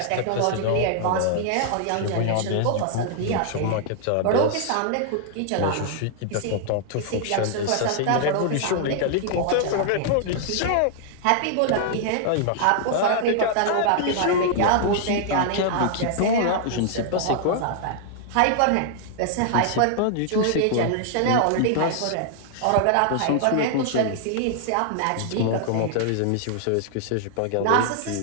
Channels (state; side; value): different; both; correlation -0.01